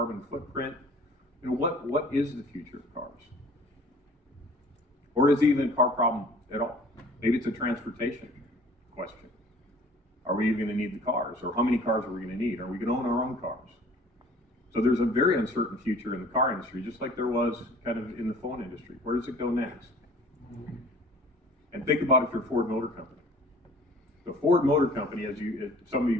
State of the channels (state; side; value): normal; both; correlation 0.50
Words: footprint? What is the future of cars? Or is it even a car problem at all? Maybe it's a transportation question. Are we even going to need the cars? Or how many cars are we going to need? Are we going to own our own cars? So there's a very uncertain future in the car industry, just like there was kind of in the phone industry. Where does it go next? And think about if you're a Ford Motor Company. The Ford Motor Company, as some of